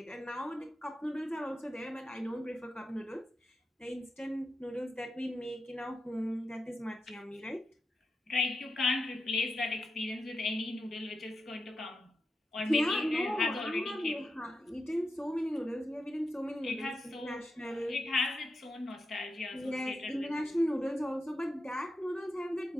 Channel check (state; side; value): normal; both; correlation 0.88